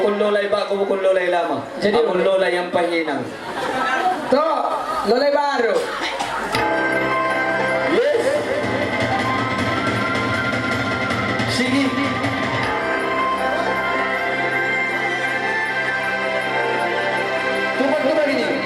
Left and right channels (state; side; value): identical; both; correlation 1.00